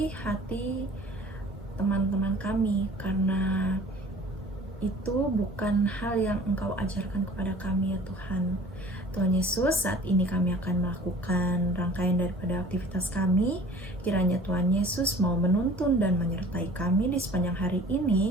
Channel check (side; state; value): both; normal; correlation 0.47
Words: hati teman-teman kami, karena itu bukan hal yang Engkau ajarkan kepada kami ya Tuhan. Tuhan Yesus, saat ini kami akan melakukan rangkaian daripada aktivitas kami. Kiranya Tuhan Yesus mau menuntun dan menyertai kami di sepanjang hari